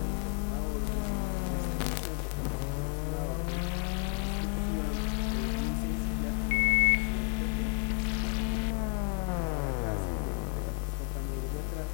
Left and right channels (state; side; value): quieter; right; 39.3 dB